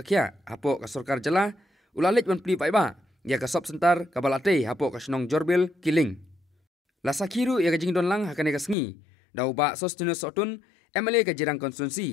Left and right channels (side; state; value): right; drops out; at 8.8 s